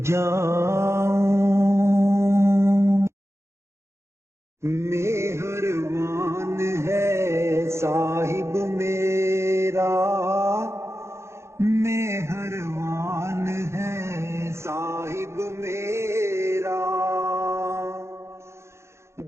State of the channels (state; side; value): late; left; 0.13 ms